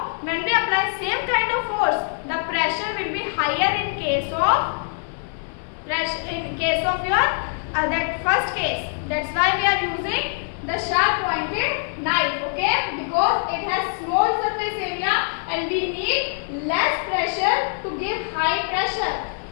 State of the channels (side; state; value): right; silent; digital silence